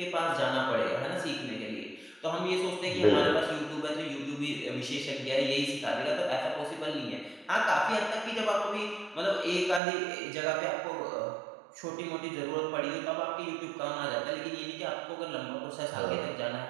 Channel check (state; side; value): drops out; left; at 9.8 s